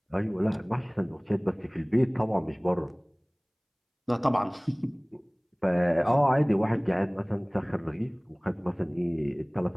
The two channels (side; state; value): both; identical; correlation 1.00